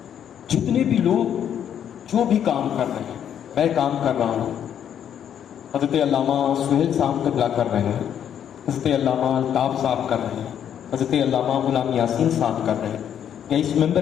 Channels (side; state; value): right; quieter; 9.3 dB